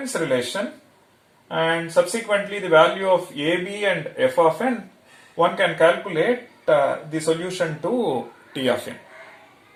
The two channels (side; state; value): both; identical; correlation 1.00